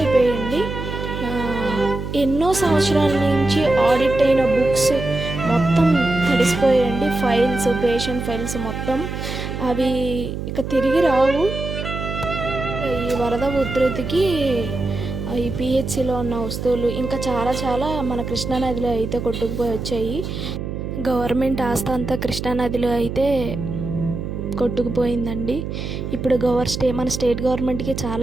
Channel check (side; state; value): right; noise; hum, 6 dB below the sound